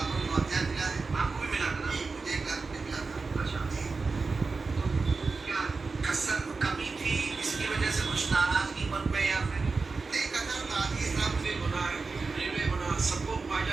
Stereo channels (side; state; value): left; quieter; 4.2 dB